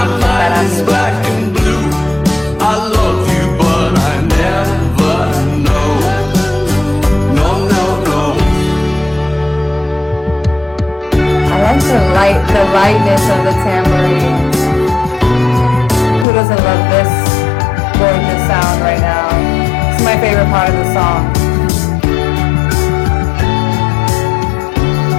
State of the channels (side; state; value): right; drops out; at 16.2 s